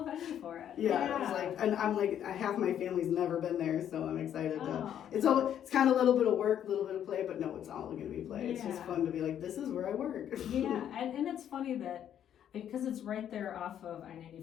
venue for it. Yeah, I was like, and I'm like, half my family's never been there, so I'm excited to. Oh. It's kind of a little bit of work, a little bit of play, but no, it's all gonna be play. It's just Yeah. fun to be like, this is where I work. Yeah, and it's funny that because it's right there off of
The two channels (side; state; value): right; quieter; 9.9 dB